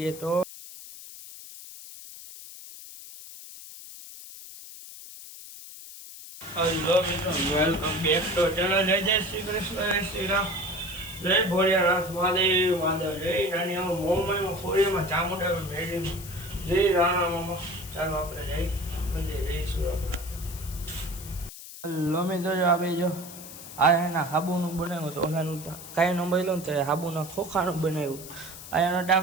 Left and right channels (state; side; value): noise; left; hiss, 14 dB below the sound